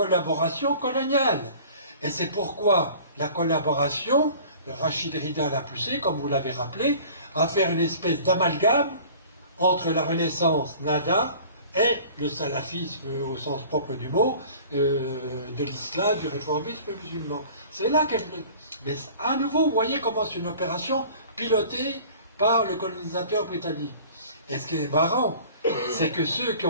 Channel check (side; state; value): both; inverted; correlation -0.46